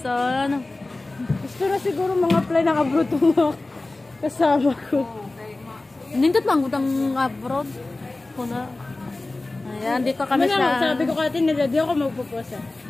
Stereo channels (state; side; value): quieter; right; 3.0 dB